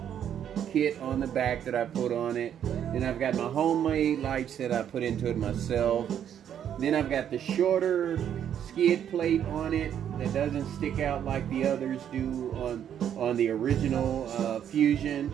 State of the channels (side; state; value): left; quieter; 9.5 dB